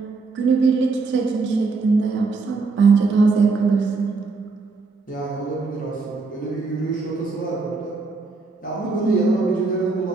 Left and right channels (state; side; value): quieter; left; 4.1 dB